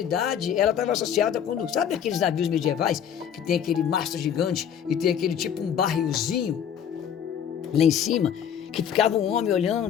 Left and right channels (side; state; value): right; quieter; 8.7 dB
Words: ela estava associada quando, sabe aqueles navios medievais que tem aquele mastro gigante e tem aquele tipo um barrilzinho lá em cima, que ficava um homem